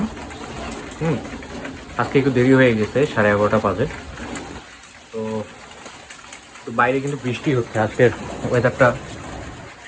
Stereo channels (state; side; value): identical; both; correlation 1.00